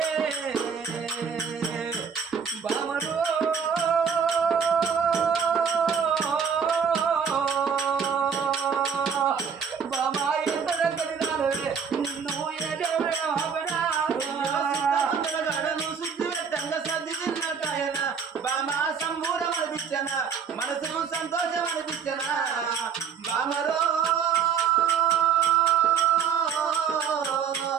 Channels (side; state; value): left; quieter; 6.8 dB